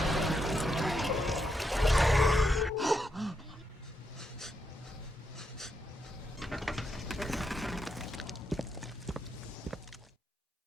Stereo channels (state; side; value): normal; both; correlation 0.81